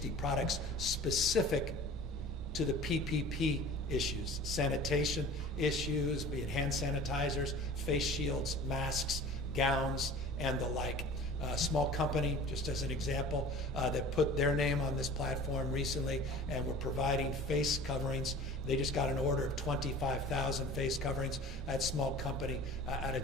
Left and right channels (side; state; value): both; normal; correlation 0.42